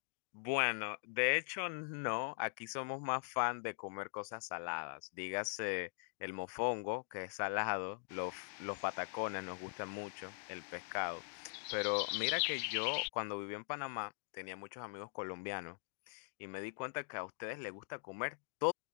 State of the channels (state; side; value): silent; right; digital silence